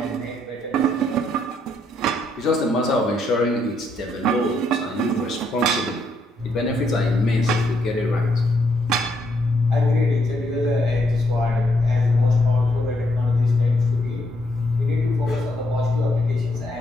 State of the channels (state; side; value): normal; both; correlation 0.74